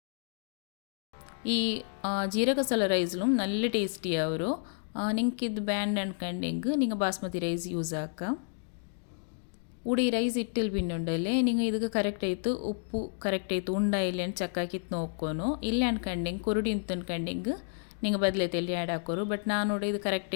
ಈ ಜೀರಕ ಮಸಾಲ ರೈಸ್ಲು നല്ല ಟೇಸ್ಟಿ ಅವರು ನಿಂಗೆ ಇದು ಬ್ಯಾಂಡ್ ಅನ್ಕಂಡು ಹೆಂಗೆ ನಿಂಗೆ ಬಾಸ್ಮತಿ ರೈಸ್ ಯೂಸ್ ಹಾಕ ಉಡಿ ರೈಸ್ ಇಟ್ಟಿಲ್ಲಿ ಬಿನ್ನುಂಡಲ್ಲೇ ನಿಂಗೆ ಇದಕ್ಕೆ ಕರೆಕ್ಟ್ ಆಯಿತು ಉಪ್ಪು ಕರೆಕ್ಟ್ ಆಯಿತು ಉಂಡ ಇಲ್ಲ ಅಂತ ಚೆಕ್ ಹಾಕಿತ್ತು ನೋಡ್ಕೊನು ಇಲ್ಲ ಅನ್ಕಂಡು ಹೆಂಗೆ ಕೊರಡಿ ಅಂತ ಅನ್ಕಂಡು ಹೆಂಗೆ ನಿಂಗೆ ಬದಲೈತೆ ಎಲ್ಲಿ ಆ್ಯಡ್ ಹಾಕೋರು ಬಟ್ ನಾನು ಇದು ಕರೆಕ್ಟ್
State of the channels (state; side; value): silent; right; digital silence